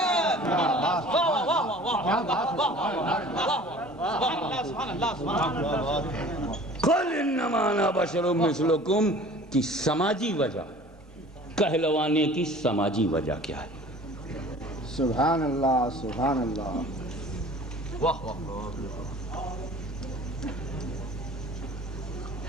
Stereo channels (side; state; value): both; normal; correlation 0.46